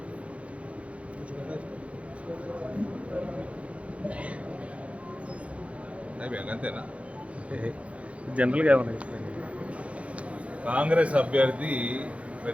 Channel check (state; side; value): late; left; 0.063 ms